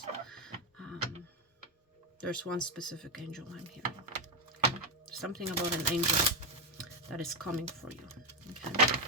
There's one specific angel I'm hearing. Okay. There's something about an angel that is coming for you. Okay.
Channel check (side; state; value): both; normal; correlation 0.08